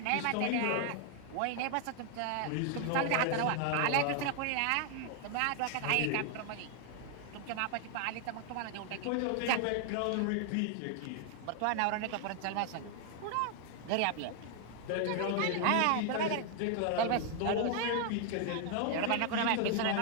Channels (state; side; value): different; both; correlation 0.00